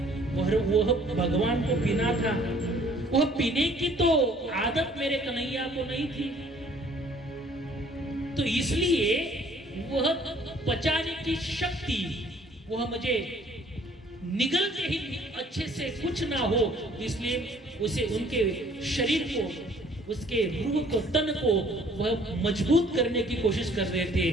वह भगवान को पीना था। वह पीने की तो आदत मेरे कन्हैया को नहीं थी, तो इसलिए वह पचाने की शक्ति वह मुझे निगलते ही अच्छे से कुछ ना हो, इसलिए उसे उनके शरीर को, उसके रूह को, तन को वह मजबूत करने की कोशिश कर रहे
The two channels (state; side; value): normal; both; correlation 0.57